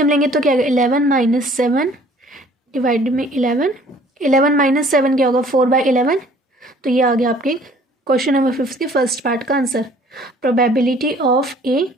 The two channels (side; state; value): both; normal; correlation 0.55